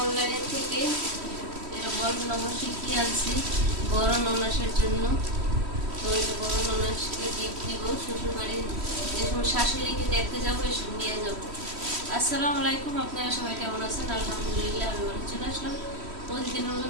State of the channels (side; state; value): left; late; 3.1 ms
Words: অনলাইনের থেকে এটা বড় নম্বর শিখিয়ে আনছি বড় ননাসের জন্য। তো এটা বড় ননাসকে গিফট দিব শ্বশুরবাড়ি যে সময় শাশুড়িকে দেখতে যাবো এসব নিয়ে যাবো। আসসালামু আলাইকুম, আপনারা সবাই কেমন আছেন? আলহামদুলিল্লাহ আমি ভালো চলে আসলাম প্রতিদিনের